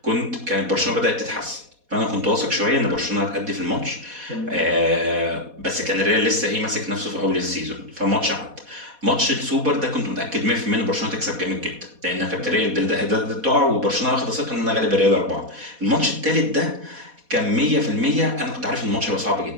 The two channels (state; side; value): late; left; 4.1 ms